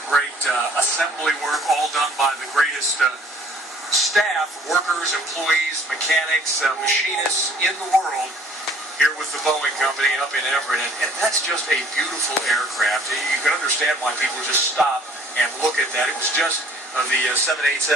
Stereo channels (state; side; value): normal; both; correlation 0.55